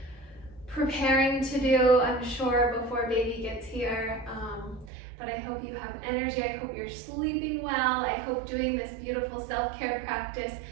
preparing to do, I'm sure, before baby gets here. But I hope you have energy. I hope you're sleeping well. I hope doing this beautiful self-care practice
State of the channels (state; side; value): drops out; left; at 4.9 s